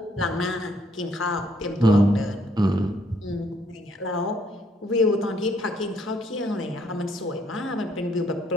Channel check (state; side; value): normal; both; correlation 0.68